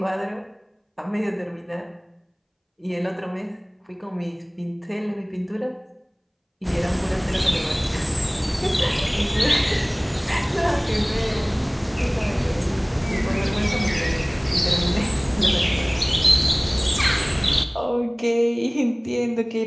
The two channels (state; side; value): identical; both; correlation 1.00